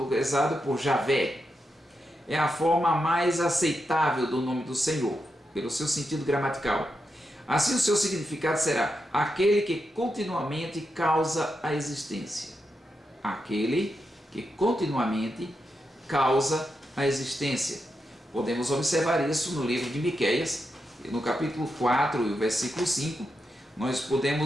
por Javé, é a forma mais aceitável do nome do Senhor, pelo seu sentido gramatical. Assim, o seu significado será aquele que continuamente causa a existência. Aquele que continuamente causa a existência. Podemos observar isso no livro de Miqueias, no capítulo 4 e o versículo 5. Nós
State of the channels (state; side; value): normal; both; correlation 0.86